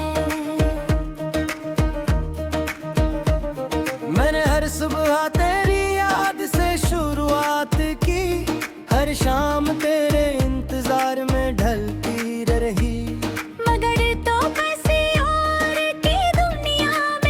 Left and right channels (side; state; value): both; identical; correlation 1.00